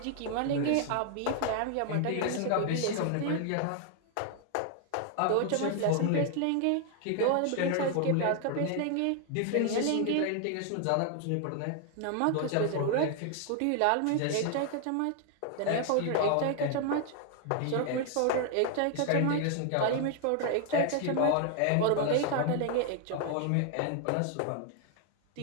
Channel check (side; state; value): both; different; correlation 0.00